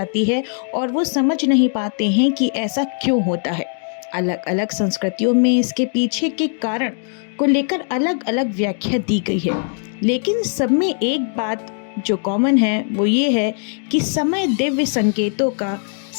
है और वो समझ नहीं पाते हैं कि ऐसा क्यों होता है। अलग अलग संस्कृतियों में इसके पीछे के कारण को लेकर अलग अलग व्याख्या दी गई है, लेकिन सब में एक बात जो कॉमन है वो ये है कि समय दिव्य संकेतों का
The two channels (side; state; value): right; silent; 61 dB below the other